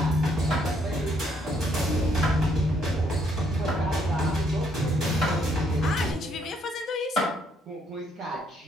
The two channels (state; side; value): normal; both; correlation 0.70